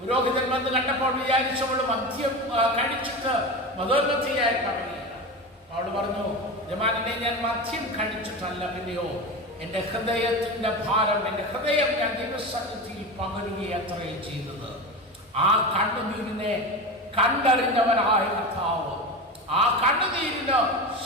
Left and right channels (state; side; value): normal; both; correlation 0.24